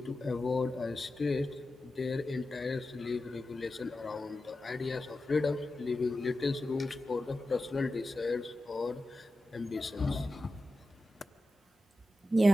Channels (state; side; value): normal; both; correlation 0.92